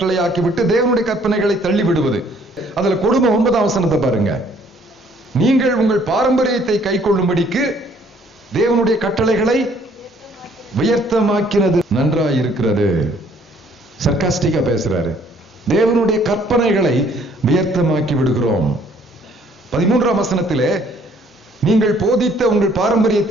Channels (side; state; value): both; normal; correlation 0.61